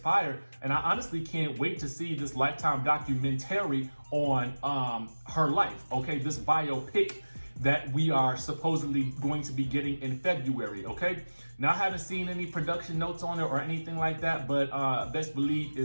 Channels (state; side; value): inverted; both; correlation -1.00